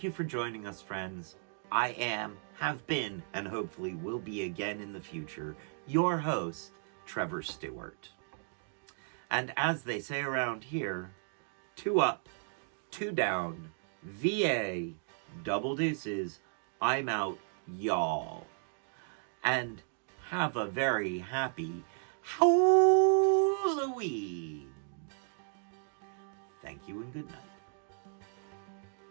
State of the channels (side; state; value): left; silent; digital silence